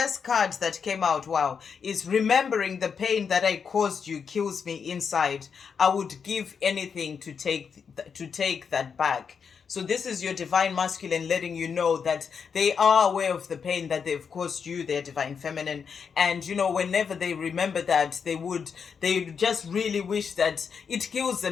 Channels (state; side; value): quieter; right; 6.4 dB